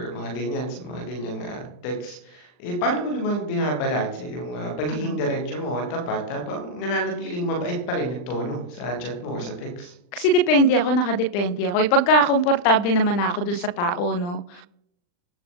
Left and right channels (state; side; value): late; right; 40 ms